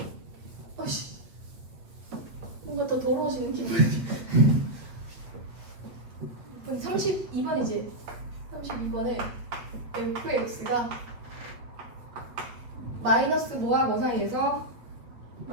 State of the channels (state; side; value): late; left; 8.2 ms